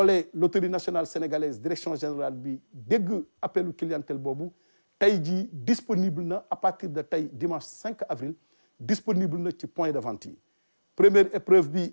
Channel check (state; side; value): inverted; both; correlation -1.00